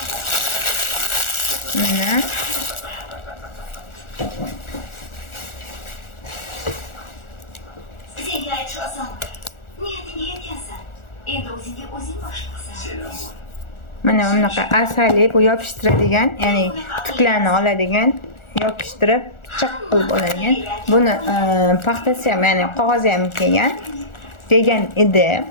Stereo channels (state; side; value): late; right; 1.4 ms